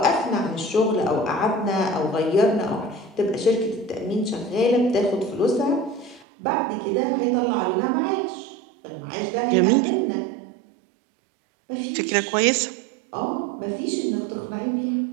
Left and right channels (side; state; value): left; drops out; at 6.2 s